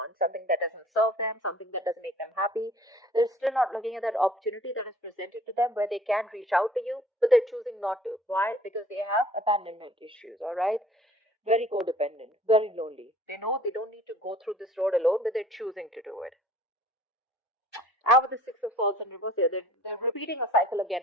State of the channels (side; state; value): both; normal; correlation 0.52